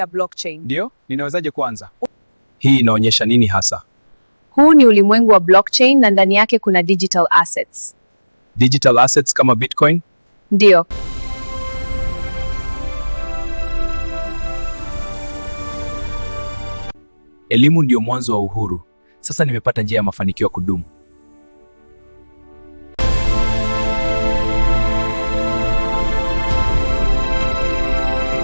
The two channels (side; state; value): both; inverted; correlation -1.00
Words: blockchain. Ndio, ninawezaje kuanza? Hii inaonyesha nini hasa? Huu ni ulimwengu wa blockchain na ndani yake kuna digital assets. Digital assets kama Bitcoin? Ndio. Elimu ndio mwanzo wa uhuru. Sasa nimepata njia ya mafanikio ya kudumu.